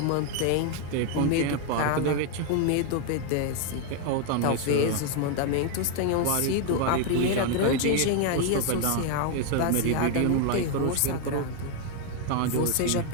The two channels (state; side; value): different; both; correlation 0.00